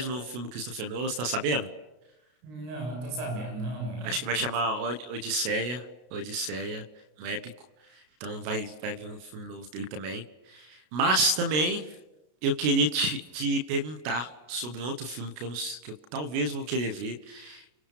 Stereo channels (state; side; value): late; left; 33 ms